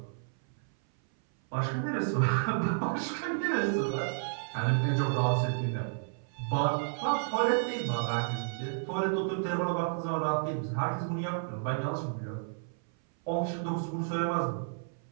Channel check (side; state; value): left; silent; 57 dB below the other